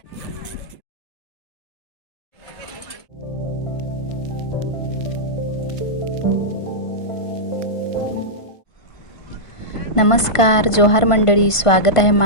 नमस्कार जोहार मंडळी, स्वागत आहे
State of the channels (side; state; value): right; late; 1.5 ms